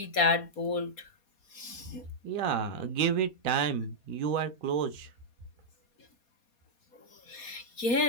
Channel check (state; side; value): late; right; 4.2 ms